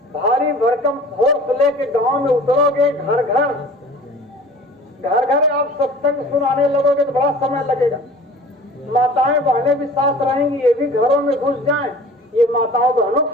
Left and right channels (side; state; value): both; normal; correlation 0.44